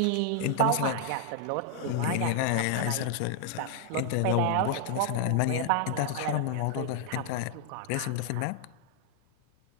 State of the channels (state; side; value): different; both; correlation -0.01